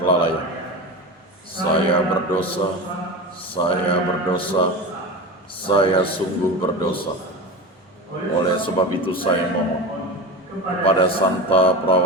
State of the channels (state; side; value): normal; both; correlation 0.26